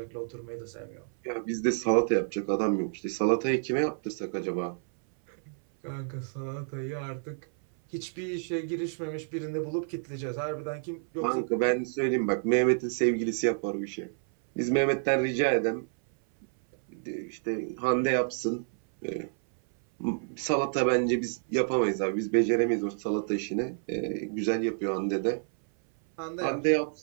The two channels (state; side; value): silent; left; 58 dB below the other